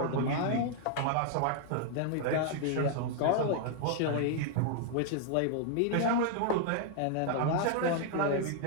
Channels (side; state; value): both; different; correlation 0.00